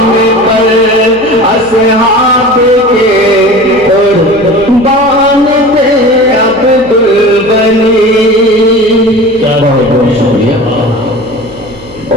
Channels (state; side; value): noise; right; hum, 21 dB below the sound